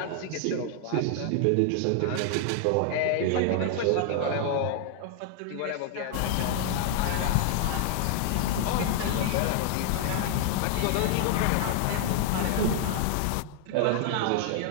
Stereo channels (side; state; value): both; different; correlation 0.00